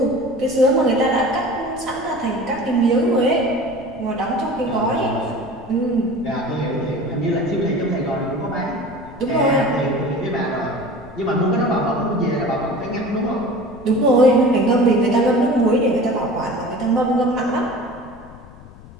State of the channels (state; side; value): noise; left; rumble, 20 dB below the sound